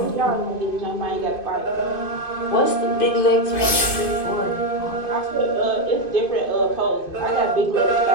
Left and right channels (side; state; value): right; late; 2.5 ms